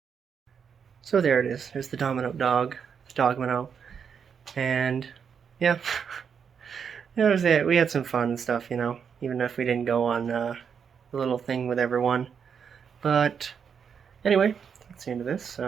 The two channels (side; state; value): left; quieter; 6.9 dB